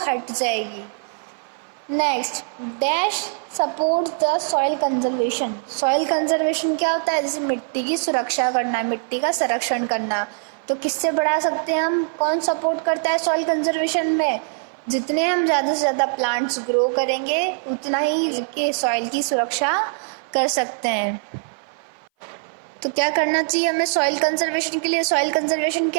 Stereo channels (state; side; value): silent; left; 59 dB below the other